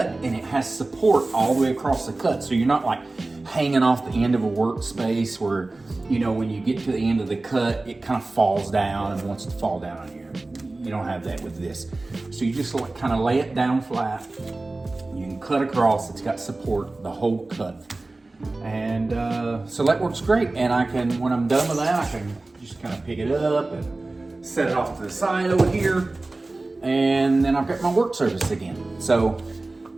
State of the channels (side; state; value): left; quieter; 3.1 dB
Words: and it has support all the way across the cut. So you're not like hanging off the end of a workspace where, you know, when you get to the end of the cut, it kind of falls down and wants to fall down on you. You don't have that with this. So you just like kind of lay it down flat. You can cut across, it's got support the whole cut. And so that works great. And I can, when I'm done with that, I can just kind of pick it up and set it off to the side over here. And then I've got my work surface again. So,